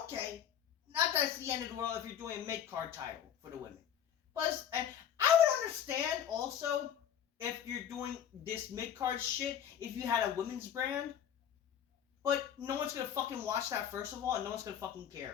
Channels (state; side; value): quieter; right; 9.3 dB